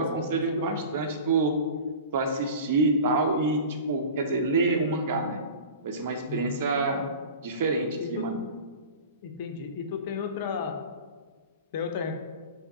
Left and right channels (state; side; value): inverted; both; correlation -0.36